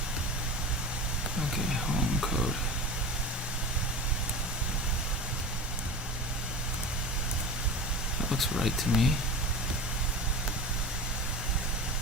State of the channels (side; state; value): both; normal; correlation 0.31